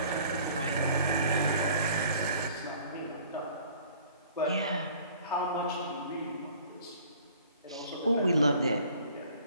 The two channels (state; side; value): inverted; both; correlation -0.53